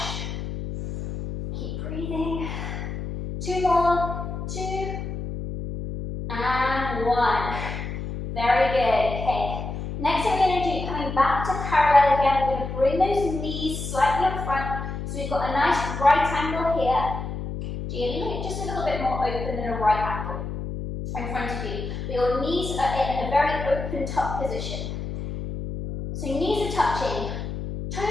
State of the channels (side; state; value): left; noise; hum, 6 dB below the sound